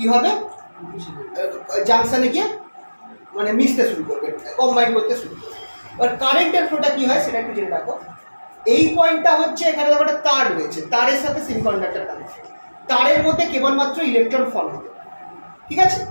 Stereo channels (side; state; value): both; inverted; correlation -1.00